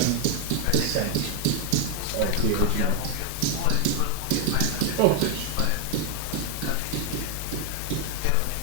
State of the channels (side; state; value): both; different; correlation 0.00